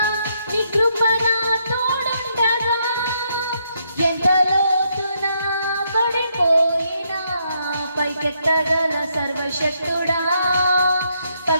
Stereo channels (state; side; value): inverted; both; correlation -0.75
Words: నీ కృప నా తోడుండగా, ఎంత లోతున పడిపోయినా పైకెత్తగల సర్వశక్తుడా,